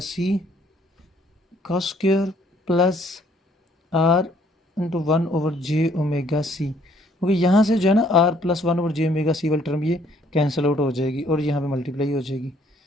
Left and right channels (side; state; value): both; normal; correlation 0.63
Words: का square plus R into 1/j⍵C, क्योंकि यहाँ से जो है ना R plus 1/j⍵C वाली टर्म ये कैंसिल आउट हो जाएगी और यहाँ पे मल्टीप्लाई हो जाएगी।